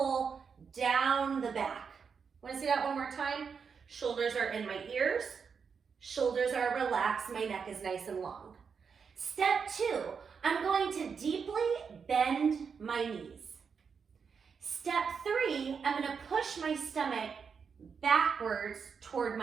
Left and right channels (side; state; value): left; quieter; 6.1 dB